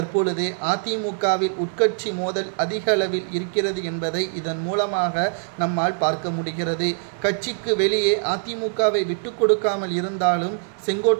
அதிமுகவில் உட்கட்சி மோதல் அதிக அளவில் இருக்கிறது என்பதை இதன் மூலமாக நம்மால் பார்க்க முடிகிறது. கட்சிக்கு வெளியே அதிமுகவை விட்டு கொடுக்காமல் இருந்தாலும்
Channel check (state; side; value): silent; left; digital silence